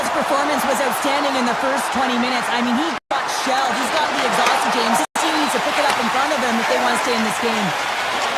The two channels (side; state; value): both; identical; correlation 1.00